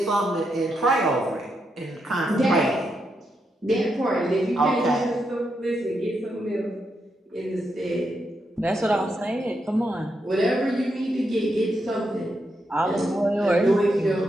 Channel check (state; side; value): normal; both; correlation 0.82